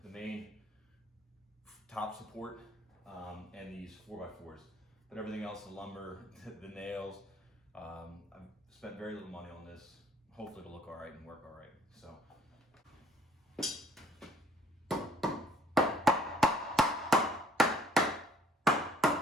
main top support and these 4x4s. But everything else, the lumber, the nails, I've spent very little money on this. Hopefully it'll look all right and work all right. So.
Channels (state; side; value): normal; both; correlation 0.61